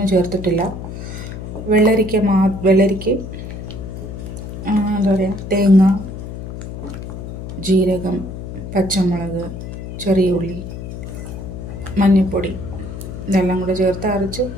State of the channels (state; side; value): noise; left; hum, 9 dB below the sound